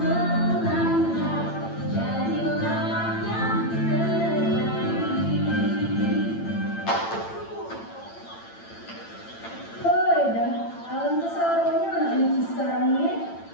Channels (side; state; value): right; late; 8.9 ms